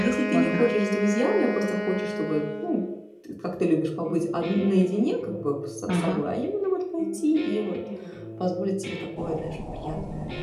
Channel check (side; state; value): both; identical; correlation 1.00